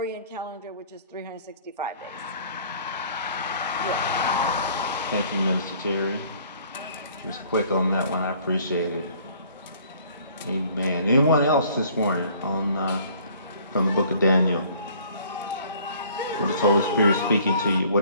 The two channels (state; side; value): inverted; both; correlation -0.55